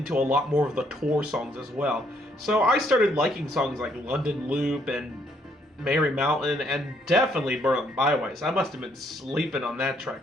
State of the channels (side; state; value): both; normal; correlation 0.69